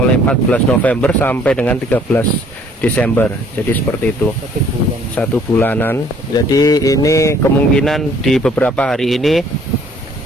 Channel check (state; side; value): normal; both; correlation 0.59